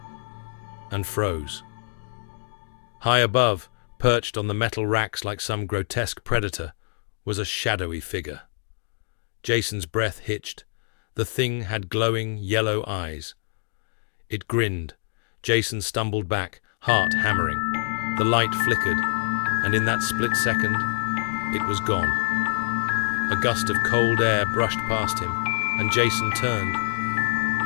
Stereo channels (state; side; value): silent; right; digital silence